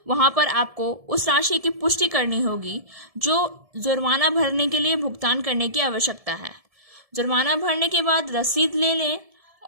वहां पर आपको उस राशि की पुष्टि करनी होगी जो जुर्माना भरने के लिए भुगतान करने की आवश्यकता है। जुर्माना भरने के बाद रसीद ले लें।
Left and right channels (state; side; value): late; left; 1.7 ms